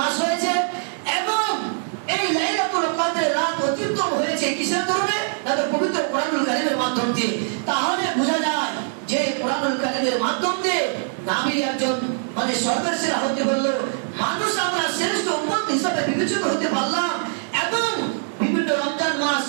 মাস হয়েছে এবং এই লাইলাতুল কদরের রাত অত্যুত্তম হয়েছে কিসের কারণে? পবিত্র কোরআনুল কারীমের মাধ্যম দিয়ে। তাহলে বোঝা যায় যে কোরআনুল কারীমের মাধ্যম দিয়ে নবী একজন মানে সর্বের সেরা হতে বলল, মানুষ আমরা শ্রেষ্ঠ উম্মত হিসাবে বিবেচিত হতে পারলাম এবং বিভিন্ন রমজান মাস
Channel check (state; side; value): silent; left; 64 dB below the other